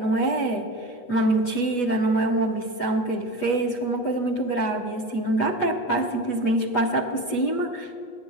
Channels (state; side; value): late; right; 8.2 ms